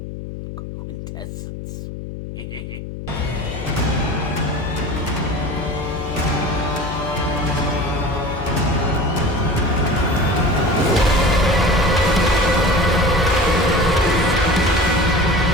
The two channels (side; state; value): left; noise; hum, 9 dB below the sound